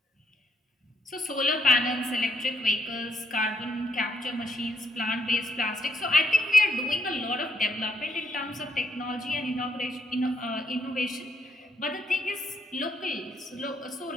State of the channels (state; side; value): normal; both; correlation 0.73